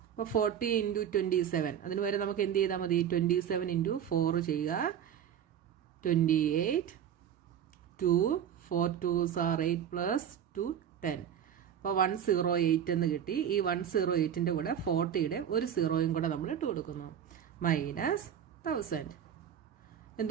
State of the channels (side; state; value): left; quieter; 9.2 dB